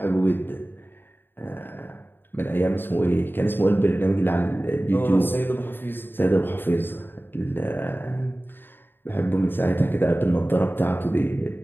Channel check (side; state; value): right; late; 0.098 ms